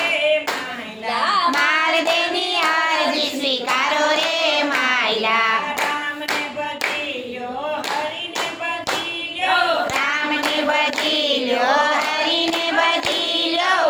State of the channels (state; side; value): identical; both; correlation 1.00